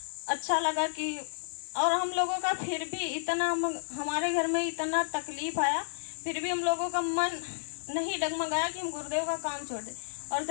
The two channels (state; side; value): silent; right; digital silence